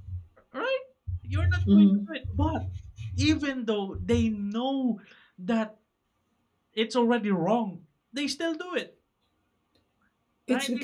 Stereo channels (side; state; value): both; identical; correlation 1.00